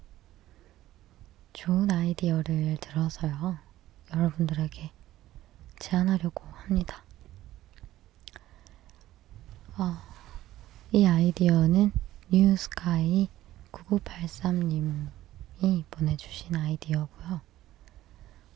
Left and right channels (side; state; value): left; quieter; 14.7 dB